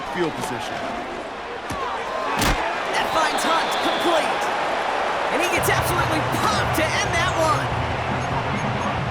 field position. That finds Hunt complete. And he gets absolutely pumped to end that one.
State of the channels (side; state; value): both; identical; correlation 1.00